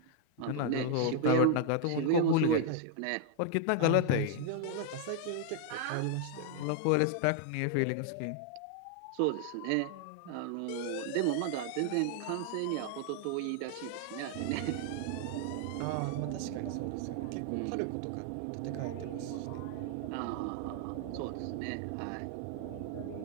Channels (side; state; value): both; different; correlation 0.00